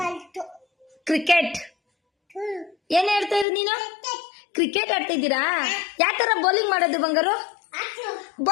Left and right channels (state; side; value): drops out; right; at 3.5 s